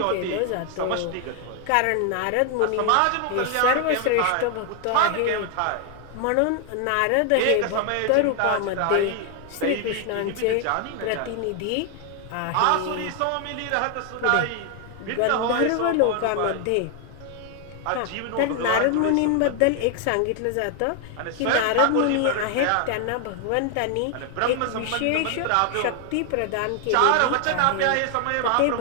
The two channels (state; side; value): different; both; correlation 0.00